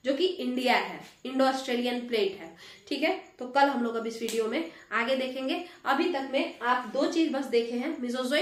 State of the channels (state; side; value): identical; both; correlation 1.00